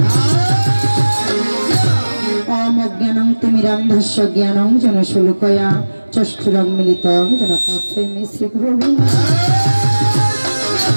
ওম অজ্ঞানং তিমিরান্ধস্য জ্ঞানং যেন শুলকয়া চক্ষুরং মিলিতং যেন তস্मै শ্রী গুরবে।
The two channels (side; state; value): both; inverted; correlation -1.00